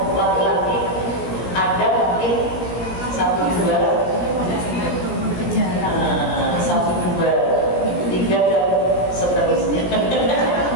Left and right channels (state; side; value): late; right; 17 ms